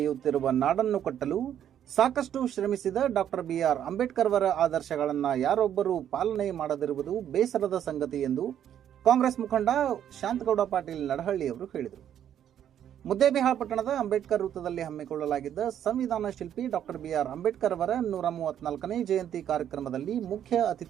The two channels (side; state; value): left; quieter; 10.1 dB